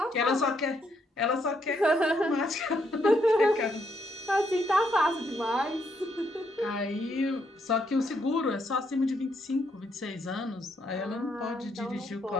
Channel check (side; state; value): both; normal; correlation 0.75